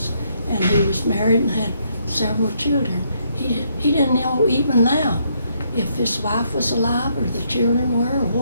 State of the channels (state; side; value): inverted; both; correlation -0.73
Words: And he was married and had several children. He didn't know even now if his wife was alive or the children were,